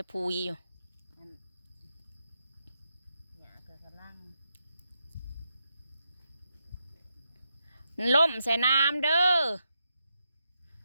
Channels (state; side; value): inverted; both; correlation -0.84